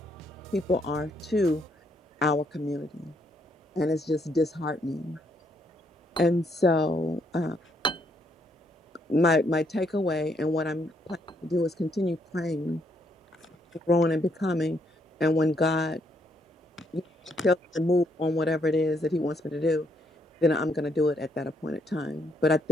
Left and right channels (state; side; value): normal; both; correlation 0.73